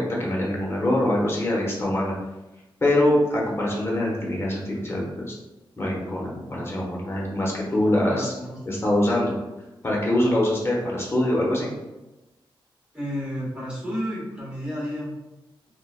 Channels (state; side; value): normal; both; correlation 0.86